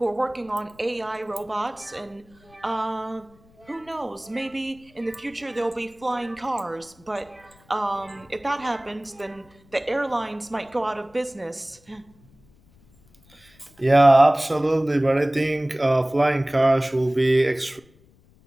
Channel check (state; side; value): noise; left; rumble, 29 dB below the sound